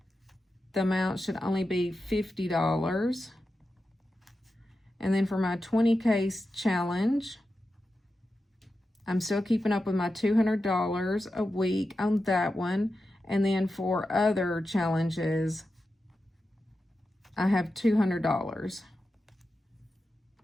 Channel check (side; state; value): both; normal; correlation 0.91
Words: the amount should only be $50. And then for my 20K challenge, I'm still keeping up with my $200 a week on that one. And then for other challenges, I have $200.